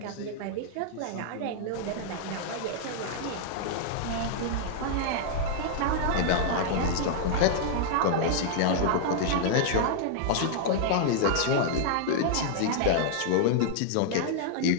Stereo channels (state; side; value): different; both; correlation -0.01